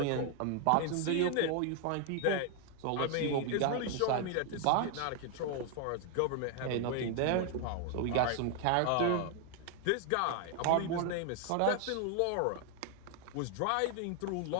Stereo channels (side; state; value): both; different; correlation 0.00